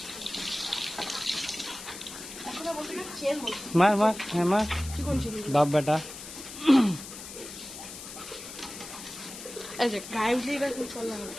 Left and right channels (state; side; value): noise; left; hiss, 12 dB below the sound